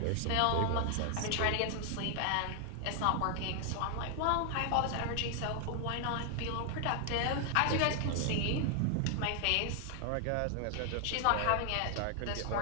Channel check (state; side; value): different; both; correlation 0.00